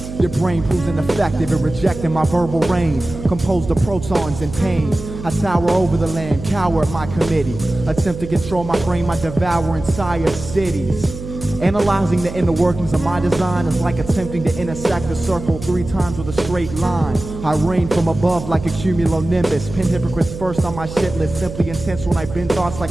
Your brain proves ineffective in rejecting my verbal rain. Composed of protons in pain. I tower over the land, cower at my committee. Attempt to control my brain, I devour entire cities. Analyzing the inner workings of my design is like attempting to intersect a circle 3 times with a straight line. I reign from above like a cumulonimbus. Pin hypocrites first on my shit list. Simply intense when I bend thoughts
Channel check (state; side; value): noise; right; hum, 10 dB below the sound